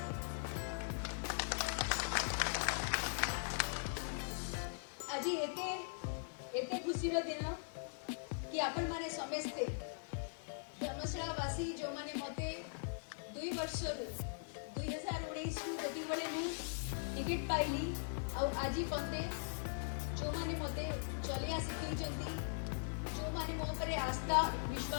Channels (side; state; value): right; silent; digital silence